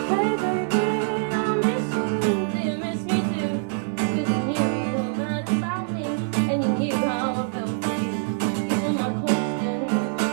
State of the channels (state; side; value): silent; left; 61 dB below the other